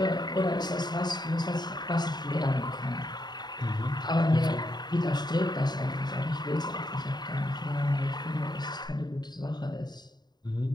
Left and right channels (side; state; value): right; late; 0.20 ms